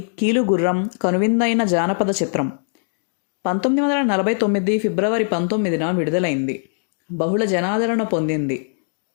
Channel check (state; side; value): silent; right; digital silence